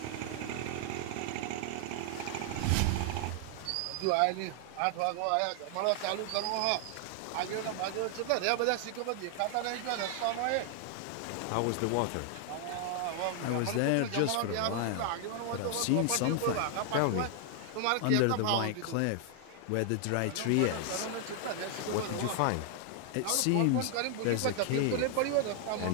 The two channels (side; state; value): both; different; correlation 0.00